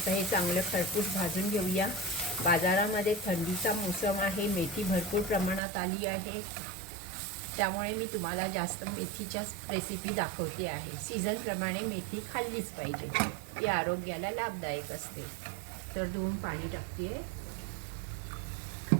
हे चांगलं खरपूस भाजून घेऊया। बाजारामध्ये थंडीचा मोसम आहे, मेथी भरपूर प्रमाणात आली आहे, त्यामुळे मी तुम्हाला जास्त मेथीच्या रेसिपी दाखवते आहे। सीझनप्रमाणे मेथी खाल्लीच पाहिजे, ती आरोग्याला लाभदायक असते। तर 2 पाणी टाकते आहे।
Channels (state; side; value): drops out; left; at 5.6 s